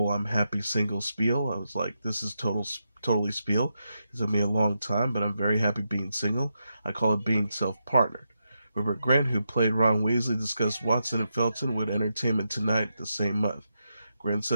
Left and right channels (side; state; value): both; inverted; correlation -0.85